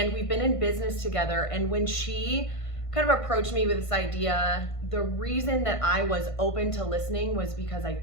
we've been in business together. And when she kind of approached me with this idea, the reason that I was open to listening was because I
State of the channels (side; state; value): right; late; 1.5 ms